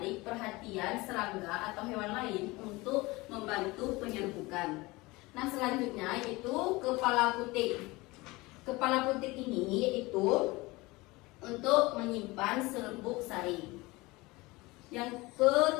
perhatian serangga atau hewan lain untuk membantu penyerbukan. Nah, selanjutnya itu kepala putik. Kepala putik ini itu untuk menyimpan serbuk sari. Yang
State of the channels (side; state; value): right; quieter; 22.3 dB